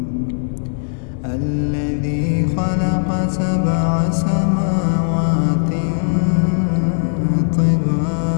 الذي خلق 7 سماوات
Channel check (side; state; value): right; silent; digital silence